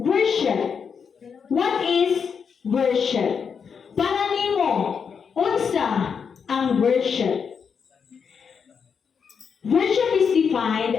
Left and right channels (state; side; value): quieter; right; 6.4 dB